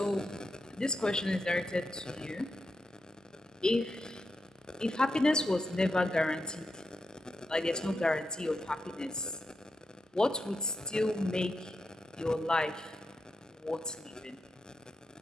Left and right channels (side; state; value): both; normal; correlation 0.86